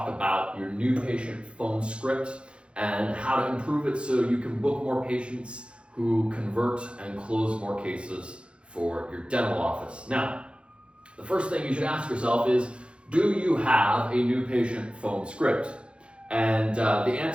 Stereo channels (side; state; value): left; late; 0.058 ms